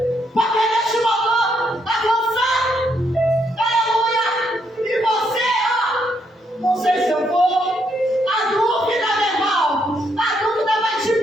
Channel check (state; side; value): normal; both; correlation 0.75